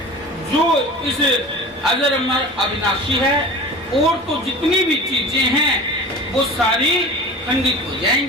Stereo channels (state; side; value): normal; both; correlation 0.37